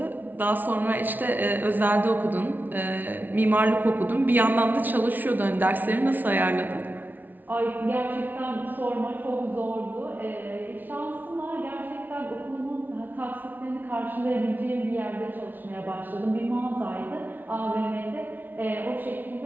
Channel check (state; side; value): late; left; 0.085 ms